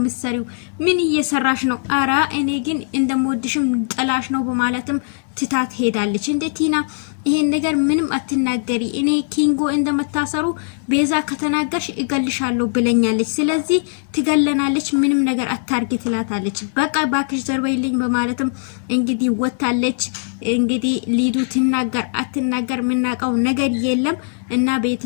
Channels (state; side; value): silent; right; 65 dB below the other